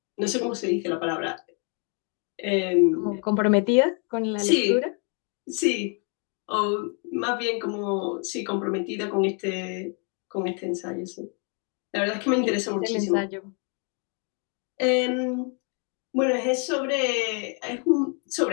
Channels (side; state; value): right; quieter; 39.3 dB